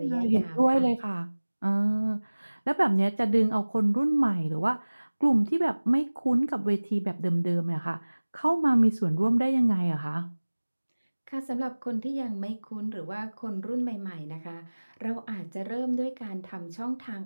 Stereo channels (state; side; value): inverted; both; correlation -1.00